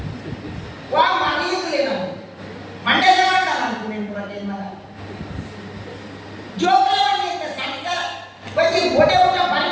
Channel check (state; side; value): identical; both; correlation 1.00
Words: ವಾ ಮನೆಯುತ್ತಲೇ ನಾವು ಮಂಡ್ಯ ಸಮಾನ ಅಂತೀನಿ ಬರಕ್ಕೆ ಮಗ ಜೋಕಲ ಬಂದಿದ್ದ ಸಂಸ್ಕಾರ ಬಂದು ಗೋಡೆ ಊಟ